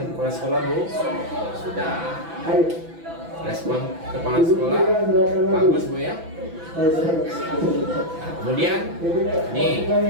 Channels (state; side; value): late; left; 6.0 ms